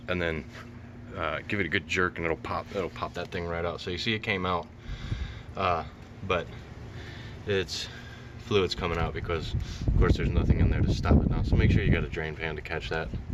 and then give it a good jerk, and it'll pop that thing right out. So you see it came out, but it's fluid's coming out because of course there's nothing in there to stop it now. So make sure you got a drain pan to catch that.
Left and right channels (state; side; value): identical; both; correlation 1.00